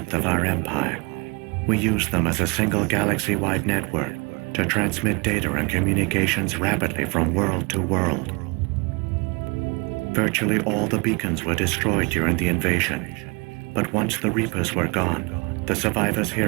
of our empire. We used them as a single galaxy-wide network to transmit data and communications rapidly from world to world. Virtually all the beacons were destroyed during the invasion, but once the Reapers were gone, the survivors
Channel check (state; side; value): quieter; left; 29.5 dB